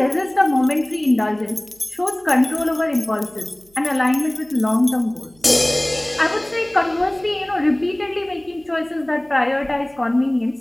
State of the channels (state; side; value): noise; right; hum, 30 dB below the sound